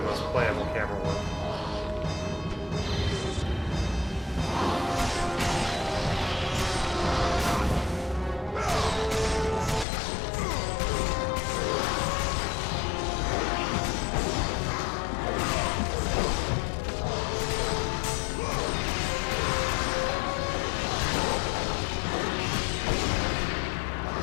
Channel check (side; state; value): right; drops out; at 9.9 s